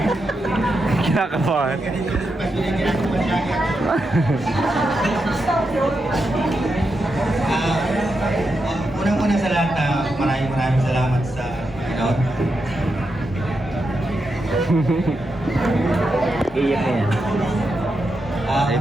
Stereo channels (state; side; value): normal; both; correlation 0.86